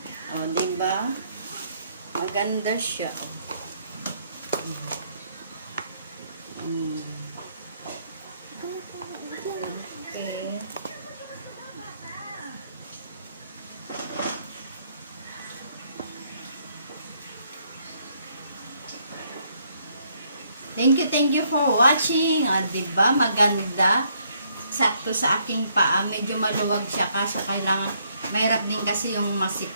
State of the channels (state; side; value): inverted; both; correlation -0.70